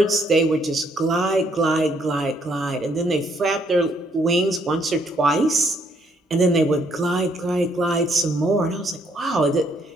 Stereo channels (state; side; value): normal; both; correlation 0.69